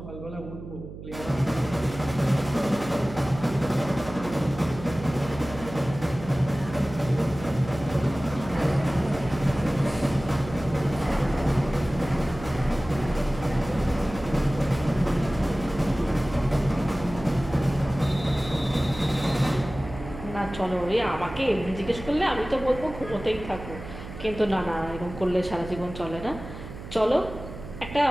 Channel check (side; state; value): right; noise; hum, 12 dB below the sound